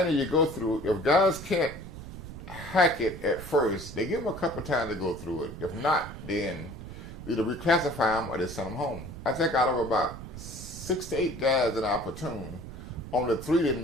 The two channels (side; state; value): right; noise; rumble, 12 dB below the sound